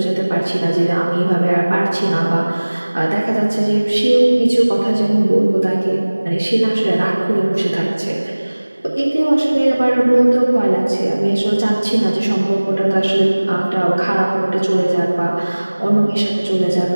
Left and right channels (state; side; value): inverted; both; correlation -1.00